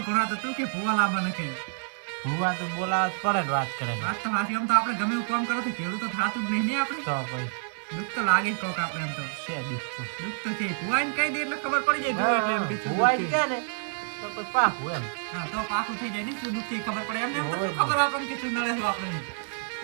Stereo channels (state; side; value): silent; left; 59 dB below the other